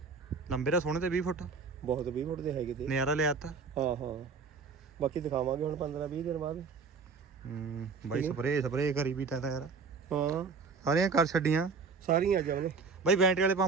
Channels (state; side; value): quieter; left; 4.9 dB